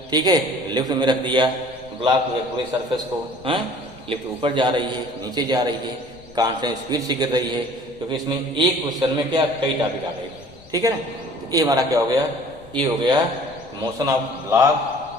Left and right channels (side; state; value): left; noise; rumble, 23 dB below the sound